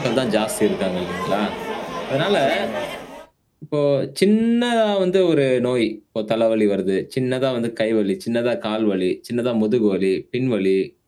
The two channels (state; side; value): identical; both; correlation 1.00